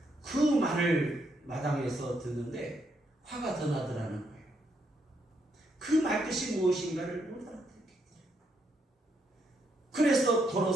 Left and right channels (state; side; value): normal; both; correlation 0.77